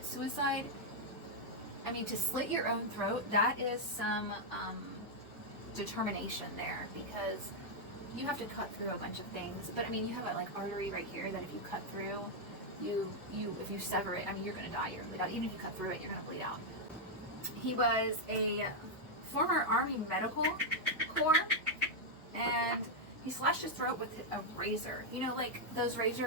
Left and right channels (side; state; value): both; normal; correlation -0.02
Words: suicide, I mean, to slit your own throat, that is some determination there, because you have to cut through a bunch of things. But I mean, you have a like artery right here that if you cut through, if you sever it, I mean, you're gonna die. You're gonna bleed out. Even if you cut through it, you're gonna bleed out. He was a former Army Medical Corps, and he slashed his throat with a razor. You know, like those